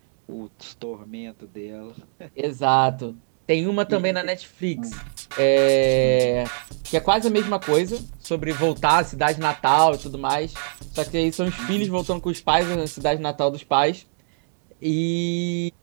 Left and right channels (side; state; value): left; silent; digital silence